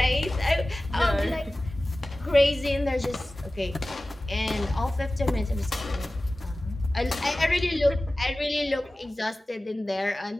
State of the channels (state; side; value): normal; both; correlation 0.96